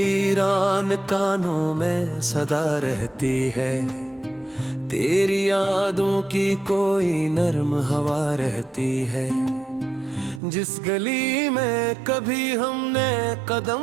कानों में सदा रहती है, तेरी यादों की कोई नर्म हवा रहती है। जिस गली में कभी हमने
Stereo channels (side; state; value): left; drops out; at 10.4 s